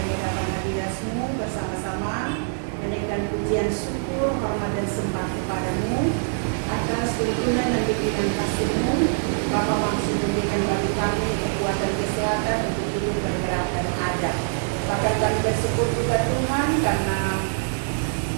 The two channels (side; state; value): left; silent; digital silence